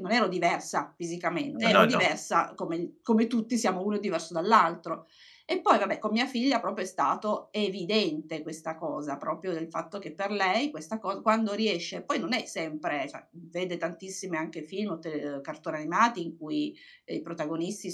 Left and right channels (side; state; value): both; identical; correlation 1.00